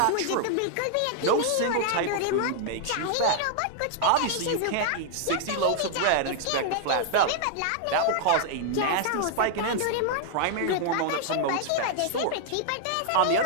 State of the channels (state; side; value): different; both; correlation -0.01